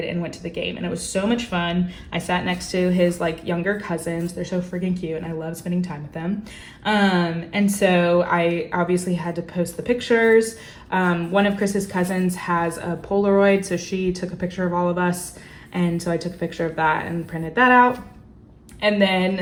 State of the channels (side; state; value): both; identical; correlation 1.00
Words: and went to the game, and it was so much fun. I sat next to his like younger cousins. They're so freaking cute, and I love spending time with them. And so I obviously had to post the pictures. One of Chris's cousins has a Polaroid, so she took a picture of all of us, and so I took a picture of that and printed that out. And